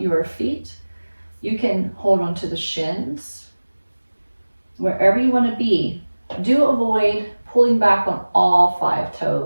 your feet. You can hold onto the shins. Wherever you want to be, do avoid pulling back on all 5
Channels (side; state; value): both; inverted; correlation -1.00